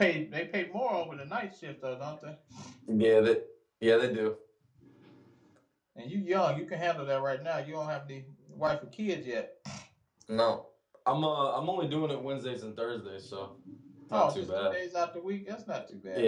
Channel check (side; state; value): both; identical; correlation 1.00